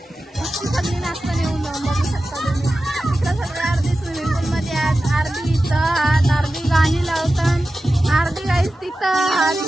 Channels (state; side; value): normal; both; correlation 0.94